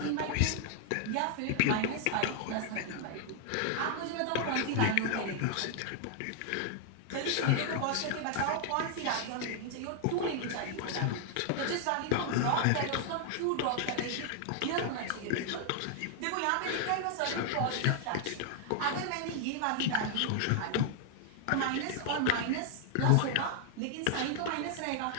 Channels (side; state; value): both; different; correlation 0.00